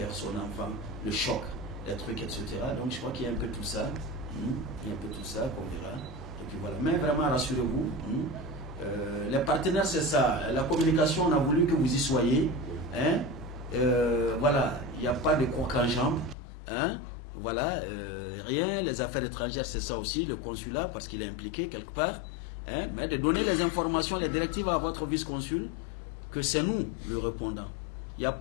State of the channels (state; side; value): drops out; right; at 16.4 s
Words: son enfant, le choc, les trucs, etc. Donc je crois qu'il y a un peu tout ça. Il y a un peu tout ça qu'on verra. Et puis voilà. Mais vraiment, rassurez-vous. Les partenaires, c'est ça. La communication, on a voulu que vous y soyez. Hein? Voilà. Il n'y a pas de coq en jambe. Hein? Voilà. Rien. Les affaires étrangères, c'est ça aussi. Le consulat, parce qu'il est impliqué quelque part. Hein? Mais de donner des informations, des directives à votre vice-consul, que c'est nous le répondant. Il n'y a